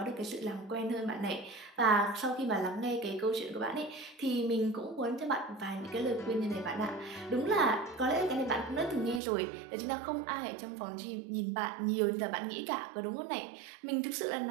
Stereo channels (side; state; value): left; drops out; at 9.2 s